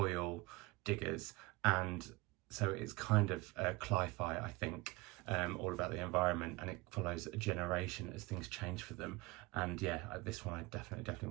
diggers, and so it's kind of cli-fi, I think, all about the environment, and it follows a generation as things change for them. And yeah, this one I definitely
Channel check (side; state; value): left; quieter; 22.0 dB